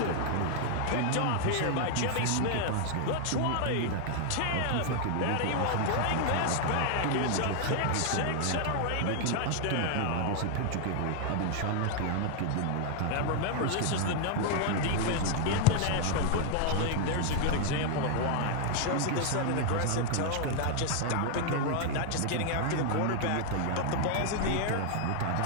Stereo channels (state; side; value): different; both; correlation 0.00